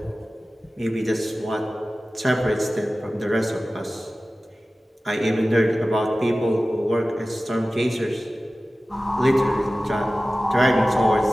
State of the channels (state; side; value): normal; both; correlation 0.96